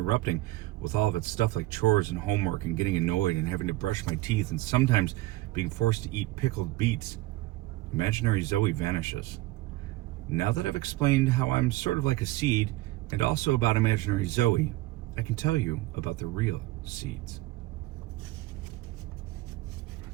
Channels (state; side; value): quieter; left; 18.3 dB